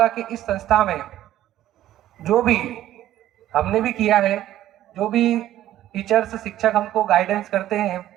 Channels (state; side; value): quieter; left; 13.2 dB